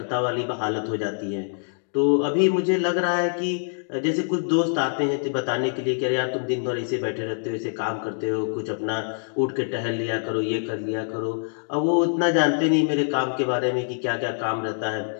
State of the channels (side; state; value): right; silent; digital silence